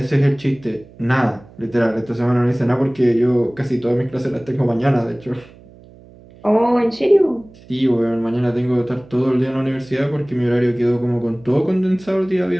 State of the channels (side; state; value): right; noise; hum, 23 dB below the sound